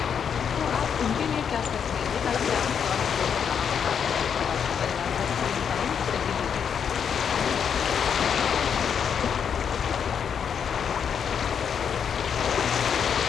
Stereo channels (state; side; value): quieter; right; 7.5 dB